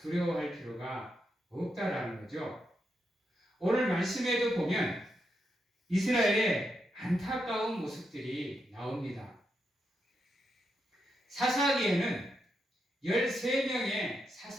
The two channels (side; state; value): both; normal; correlation 0.83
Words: 필요가 없다라는 거죠. 오늘 말씀에도 보면 이스라엘의 안타까운 모습들이 나옵니다. 사사기에는 13명의